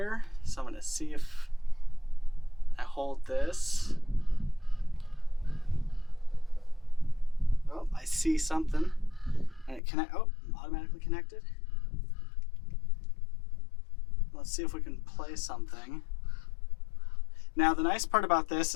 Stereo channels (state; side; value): drops out; right; at 9.8 s